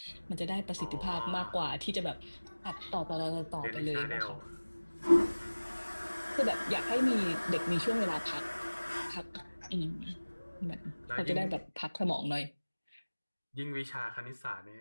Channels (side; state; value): both; inverted; correlation -1.00